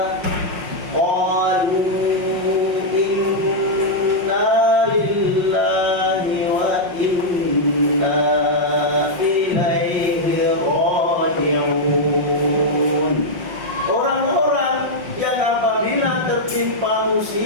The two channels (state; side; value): late; left; 5.6 ms